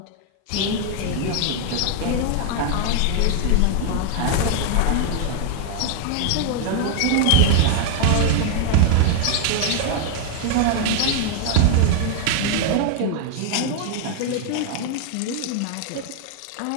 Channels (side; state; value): both; different; correlation 0.00